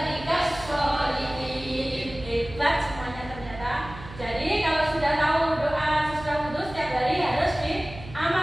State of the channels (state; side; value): noise; right; hum, 15 dB below the sound